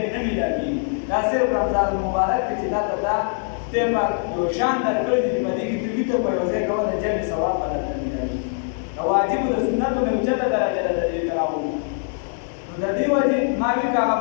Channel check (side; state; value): right; silent; 60 dB below the other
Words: نه میلاږي دا صرف رمضان المبارک کې چې دا ته دا خدای پاک یو شان درکړی دی په دې کې ته ویته په یو ځای کولی جمع ثواب به درته ملایي د واجبو د سنتو نه اوچته درجه ده د دې تراوح نو د دې وجې ما وي که هغه